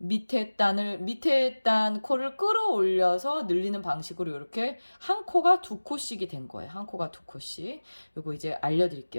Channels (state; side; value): inverted; both; correlation -1.00